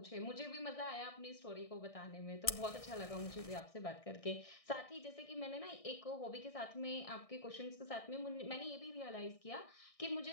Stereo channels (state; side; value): late; right; 1.6 ms